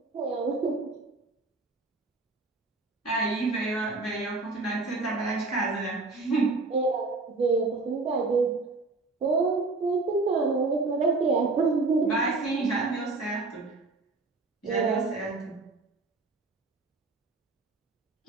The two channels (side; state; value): left; quieter; 3.6 dB